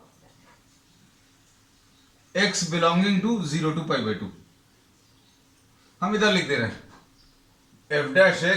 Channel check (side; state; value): both; identical; correlation 1.00